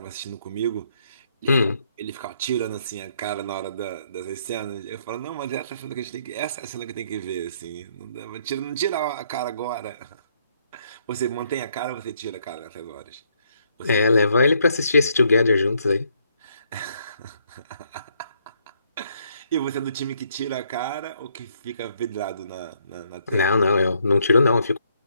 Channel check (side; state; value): both; inverted; correlation -0.70